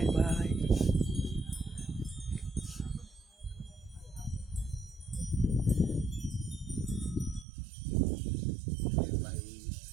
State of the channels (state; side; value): drops out; left; at 7.5 s